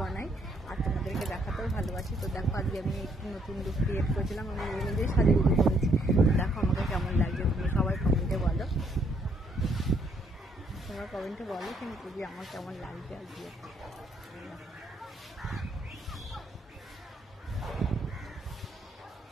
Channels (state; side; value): normal; both; correlation 0.69